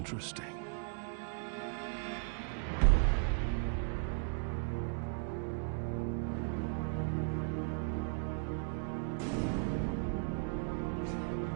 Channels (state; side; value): silent; left; 53 dB below the other